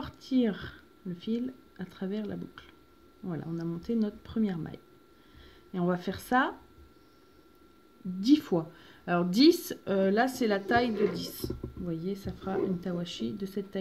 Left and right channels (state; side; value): identical; both; correlation 1.00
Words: le fil à travers la boucle. Voilà, on a monté notre première maille. Et on va faire ça 10 fois. Alors 10, là c'est la taille de 10. Vous voyez, ça fera une tawashi de cette